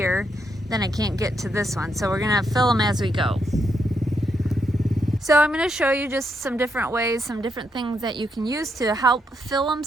then I can't get to this one, so we're gonna fill them as we go. So I'm going to show you just some different ways, some different things that you can use to help fill them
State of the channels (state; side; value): normal; both; correlation 0.79